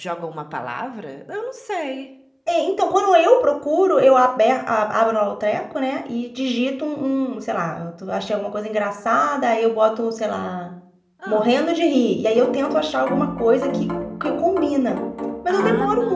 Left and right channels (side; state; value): both; identical; correlation 1.00